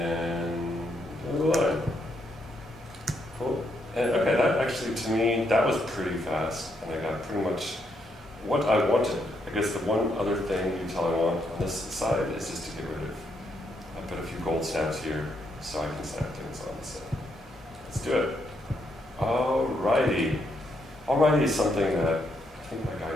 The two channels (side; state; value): both; normal; correlation 0.77